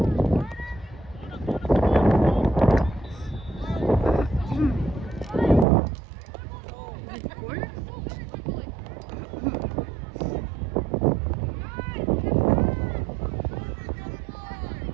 Is it corner?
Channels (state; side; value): drops out; left; at 5.7 s